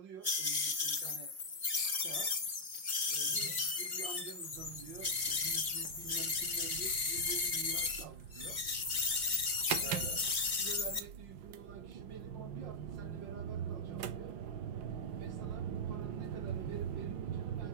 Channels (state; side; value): late; left; 5.6 ms